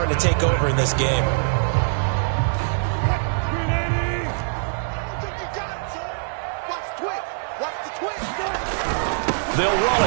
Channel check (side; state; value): left; silent; 63 dB below the other